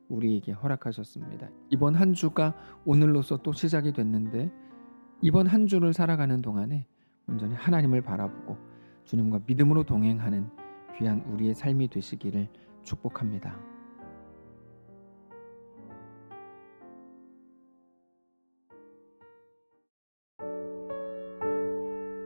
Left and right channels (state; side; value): inverted; both; correlation -1.00